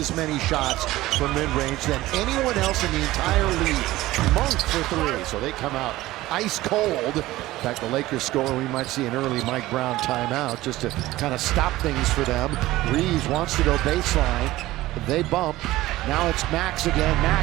many shots from mid-range than anyone else in the entire league. Monk for 3. So they come out ice cold. In fact, the Lakers score. We might see an early Mike Brown timeout just to kind of stop things for them. Reeves wants to go baseline. They bump. Now it's Max again.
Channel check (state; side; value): quieter; left; 17.1 dB